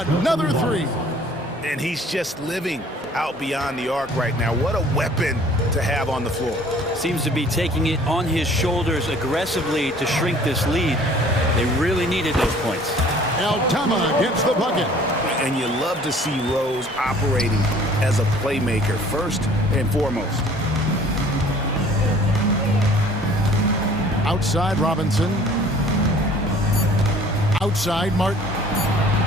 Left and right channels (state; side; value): normal; both; correlation 0.53